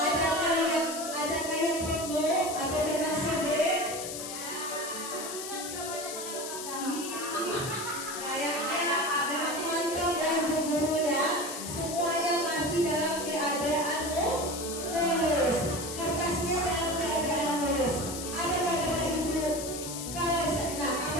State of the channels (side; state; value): left; noise; hiss, 7 dB below the sound